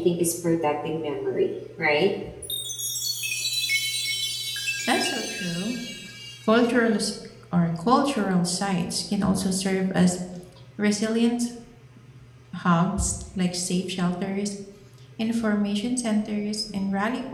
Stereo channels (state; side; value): identical; both; correlation 1.00